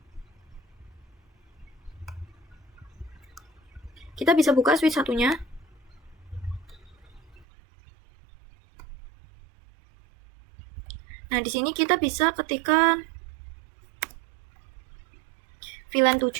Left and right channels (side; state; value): left; drops out; at 7.5 s